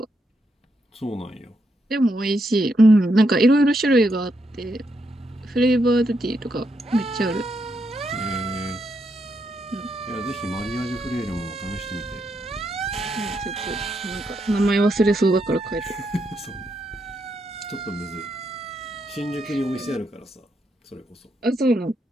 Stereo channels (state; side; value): normal; both; correlation 0.80